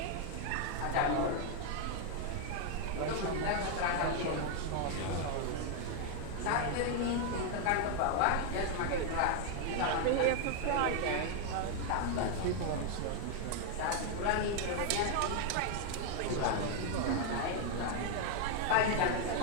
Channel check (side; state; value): both; different; correlation 0.00